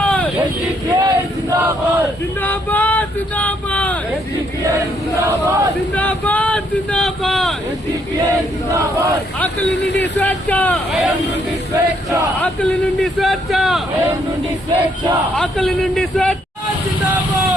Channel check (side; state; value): both; normal; correlation 0.71